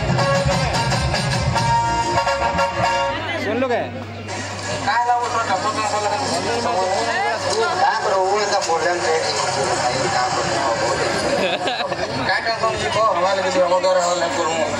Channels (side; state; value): both; identical; correlation 1.00